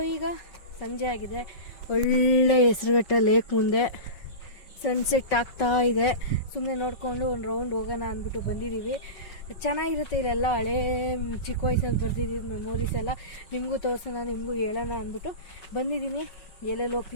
ಈಗ ಸಂಜೆ ಆಗಿದೆ, ಒಳ್ಳೆ ಹೆಸರುಘಟ್ಟ ಲೇಕ್ ಮುಂದೆ ಸನ್ಸೆಟ್ ಆಗ್ತಾ ಇದೆ. ಸುಮ್ಮನೆ ನೋಡಿಕೊಂಡು ಒಂದು ರೌಂಡ್ ಹೋಗೋಣ ಅಂದ್ಬಿಟ್ಟು ಬಂದಿದ್ದೀವಿ. ಚೆನ್ನಾಗಿರುತ್ತೆ ಇಲ್ಲೆಲ್ಲ. ಹಳೇ ಚಿಕ್ಕ ವಯಸ್ಸಲ್ಲಿ ಬರ್ತಿದ್ದೀವಿ ಮೆಮೊರೀಸ್ ಎಲ್ಲ ನಿಮಗೂ ತೋರಿಸೋಣ, ನಿಮಗೂ ಹೇಳೋಣ ಅಂದ್ಬಿಟ್ಟು ಬಂದಿದ್ದೀನಿ. ಎಲ್ಲೆಲ್ಲಿ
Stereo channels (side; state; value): right; late; 5.4 ms